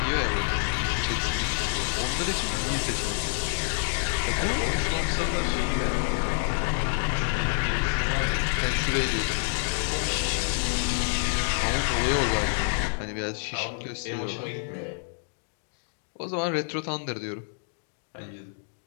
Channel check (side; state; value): right; silent; digital silence